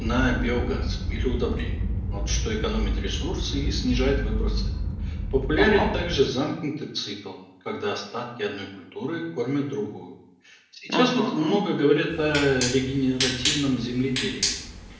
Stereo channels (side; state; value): both; identical; correlation 1.00